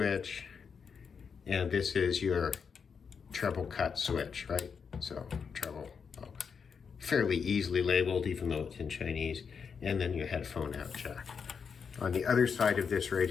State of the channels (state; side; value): quieter; right; 6.1 dB